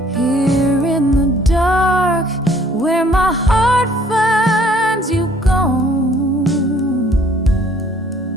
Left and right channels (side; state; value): both; normal; correlation 0.59